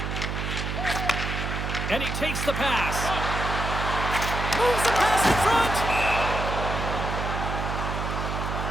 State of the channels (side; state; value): right; noise; hum, 3 dB below the sound